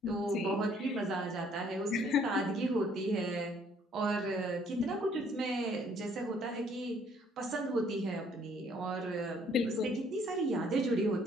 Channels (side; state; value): both; normal; correlation 0.63